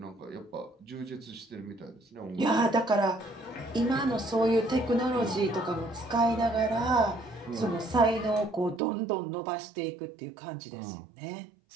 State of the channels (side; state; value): left; drops out; at 8.8 s